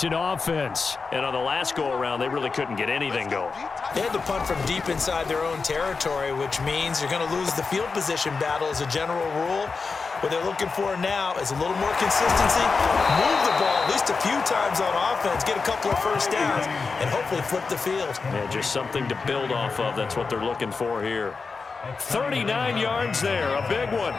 offense. And on the last go-around, they really couldn't get anything going. They had to punt from deep inside their own territory, which means you're going to lose the field position battle as a general rule. What they're looking for now is a little more consistency, move the ball at least a few times on offense, get a couple of first downs, and hopefully flip the field. Yeah, just something to build off of. That's what they're looking for here. 39 yards there, a big one.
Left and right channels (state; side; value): quieter; right; 4.6 dB